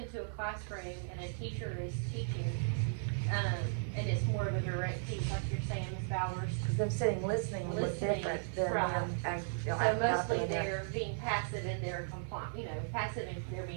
a classroom and a teacher is teaching, and it's more of a direct teach, like you're saying, Ms. Bowers. Because them sitting listening would look different than them. So mostly they're being passive and they're compliant, passive and they're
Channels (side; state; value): left; silent; 54 dB below the other